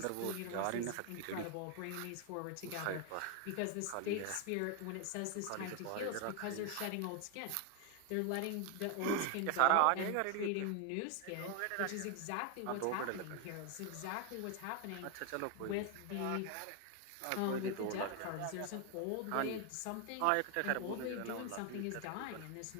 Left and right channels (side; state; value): both; different; correlation 0.01